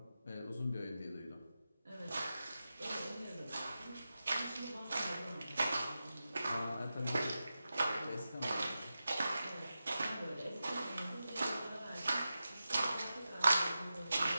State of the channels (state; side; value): inverted; both; correlation -0.92